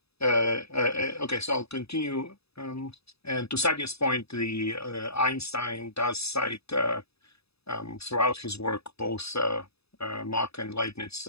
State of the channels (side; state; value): right; late; 0.78 ms